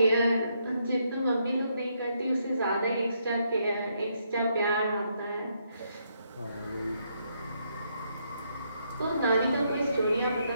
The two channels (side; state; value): both; inverted; correlation -0.75